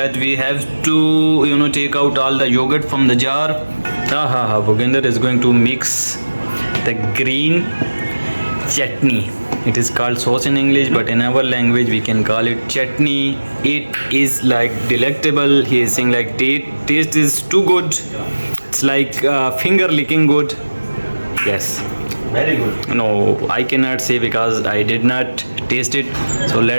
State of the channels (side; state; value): both; inverted; correlation -1.00